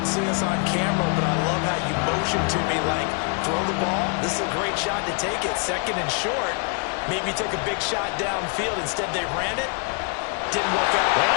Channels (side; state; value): right; quieter; 36.5 dB